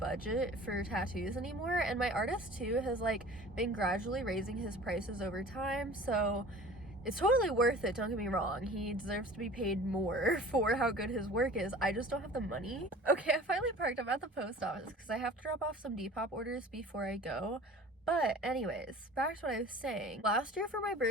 for tattoos anymore, and my artist too has like been gradually raising his prices over time, so it's totally worth it, don't get me wrong. He deserves to be paid more for how good his work is. I just don't have the money. Okay, I finally parked. I'm at the post office because I have to drop off some Depop orders before I go. But anyways, back to what I was saying. Last year for my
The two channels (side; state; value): both; normal; correlation 0.43